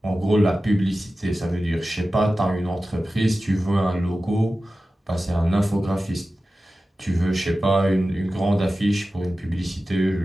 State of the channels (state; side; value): normal; both; correlation 0.95